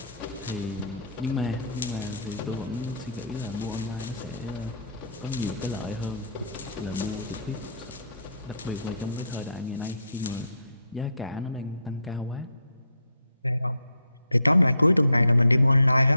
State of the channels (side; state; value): both; inverted; correlation -0.67